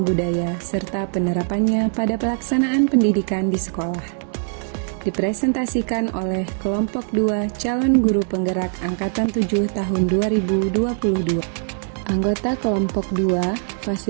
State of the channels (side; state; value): left; silent; 65 dB below the other